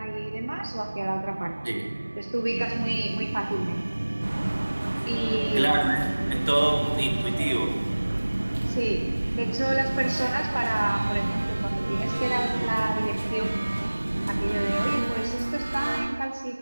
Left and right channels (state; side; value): inverted; both; correlation -1.00